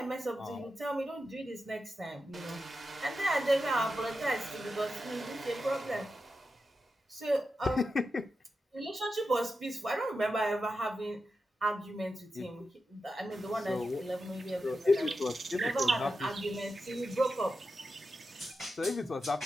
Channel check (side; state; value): both; normal; correlation 0.89